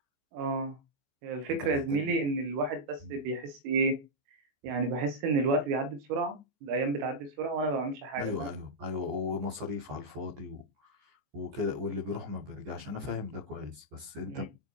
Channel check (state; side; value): late; left; 14 ms